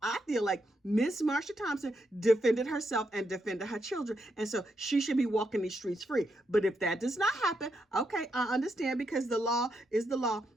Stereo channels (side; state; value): both; normal; correlation 0.81